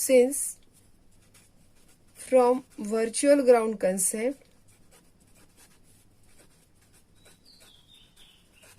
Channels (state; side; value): identical; both; correlation 1.00